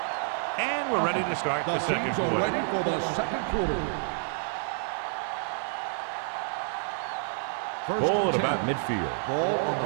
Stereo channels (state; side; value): silent; left; digital silence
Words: And we're ready to start the second teams are quarter. ready for the second quarter. Ball at about midfield. Ball on